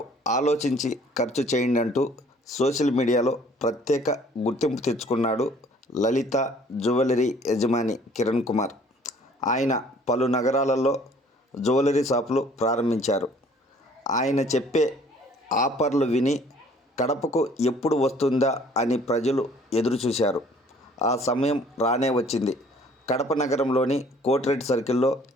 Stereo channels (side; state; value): both; normal; correlation 0.56